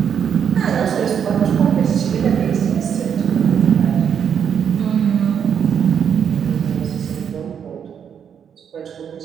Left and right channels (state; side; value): quieter; left; 7.9 dB